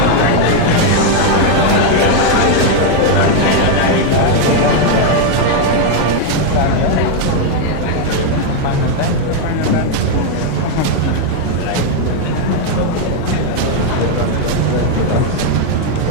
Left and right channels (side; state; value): both; different; correlation 0.01